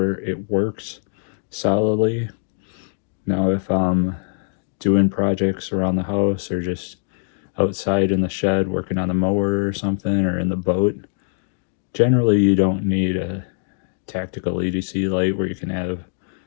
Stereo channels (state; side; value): silent; right; 62 dB below the other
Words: it works solidly. Now if I'm doing projects around the house or just outside in the shed working on the mower or something, or in the boat, generally you don't need a tactical EDC light where you can have